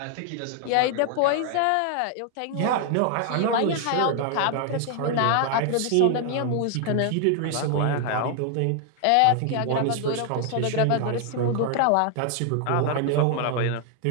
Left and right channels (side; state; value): both; different; correlation 0.00